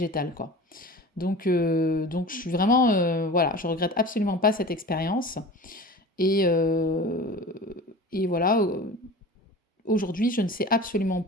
quoi. Donc je suis vraiment, voilà, je regrette absolument pas cette expérience. Et, euh, et voilà, aujourd'hui, je ne sais absolument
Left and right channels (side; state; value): both; normal; correlation 0.36